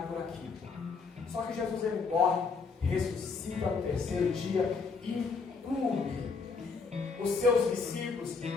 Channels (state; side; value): quieter; right; 4.8 dB